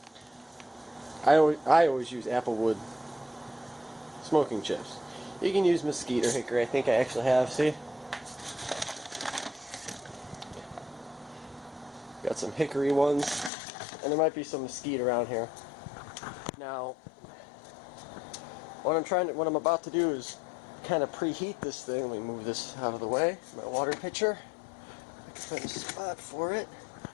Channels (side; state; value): right; drops out; at 13.5 s